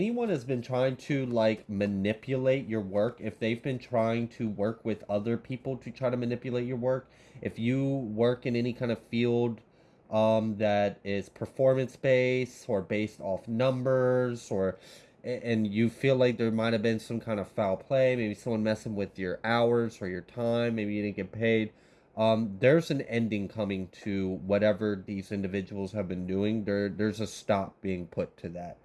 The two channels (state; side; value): identical; both; correlation 1.00